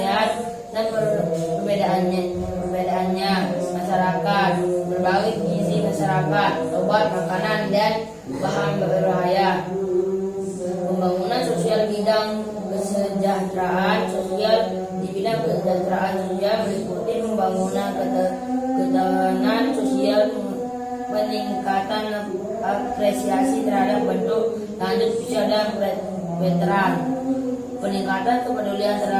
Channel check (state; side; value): identical; both; correlation 1.00